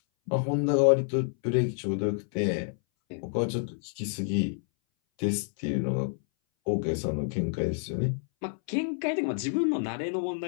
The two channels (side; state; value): right; silent; 59 dB below the other